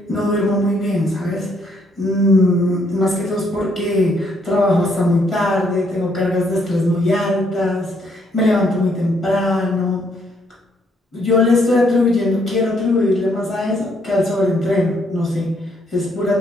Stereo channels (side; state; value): both; normal; correlation 0.71